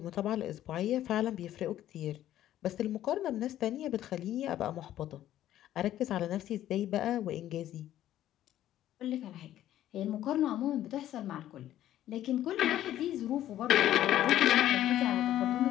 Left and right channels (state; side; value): quieter; right; 12.7 dB